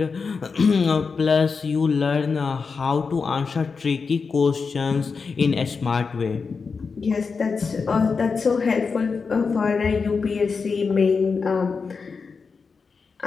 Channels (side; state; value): right; quieter; 5.0 dB